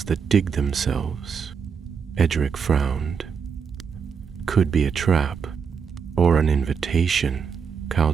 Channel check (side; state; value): left; quieter; 6.4 dB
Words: that dig themselves." Eärendil frowned. "Could be a trap, or an invitation,"